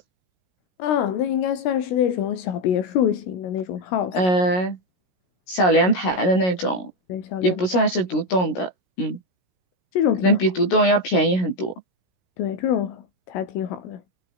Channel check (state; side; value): late; right; 16 ms